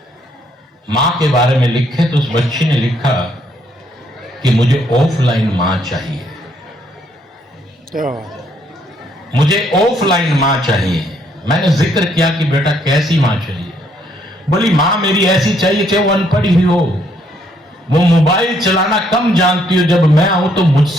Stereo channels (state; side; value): normal; both; correlation 0.70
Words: माँ के बारे में लिखे। तो उस बच्ची ने लिखा कि मुझे ऑफलाइन माँ चाहिए, मुझे ऑफलाइन माँ चाहिए। मैंने जिक्र किया कि बेटा कैसी माँ चाहिए? बोली माँ मेरी ऐसी चाहिए कि वो अनपढ़ ही हो, वो मोबाइल चलाना कम जानती हो, जब मैं आऊं तो